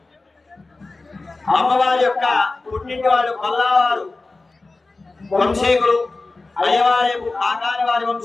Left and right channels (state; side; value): quieter; right; 3.4 dB